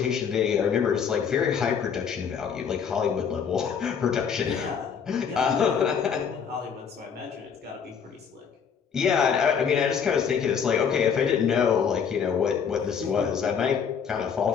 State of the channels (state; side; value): quieter; right; 7.0 dB